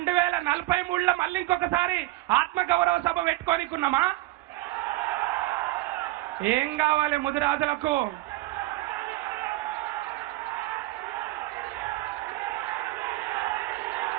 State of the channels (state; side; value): quieter; left; 18.6 dB